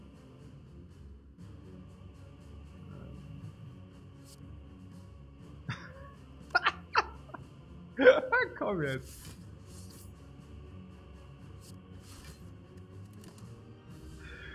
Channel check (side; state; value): both; identical; correlation 1.00